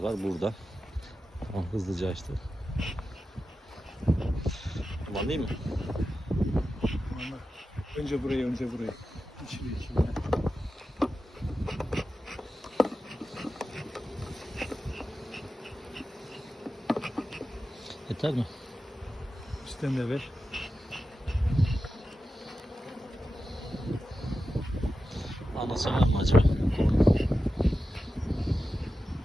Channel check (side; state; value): both; normal; correlation 0.92